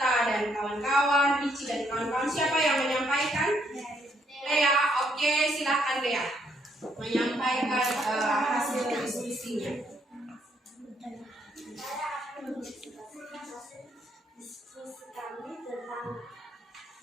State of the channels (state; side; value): normal; both; correlation 0.71